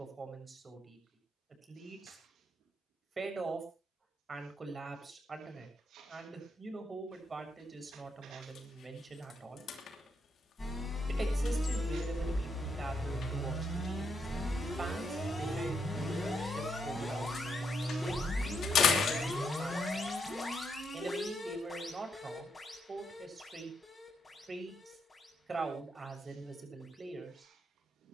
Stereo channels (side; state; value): both; normal; correlation 0.79